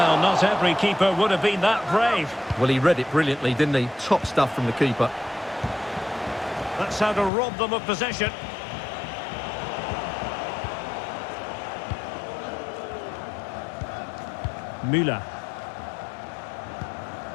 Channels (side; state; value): right; drops out; at 7.3 s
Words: not every keeper would have been that brave. Well, he read it brilliantly, didn't he? Top stuff from the keeper. That's how to rob them of possession. Müller.